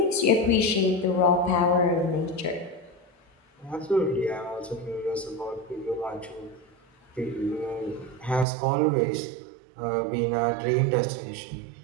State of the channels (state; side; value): drops out; left; at 8.5 s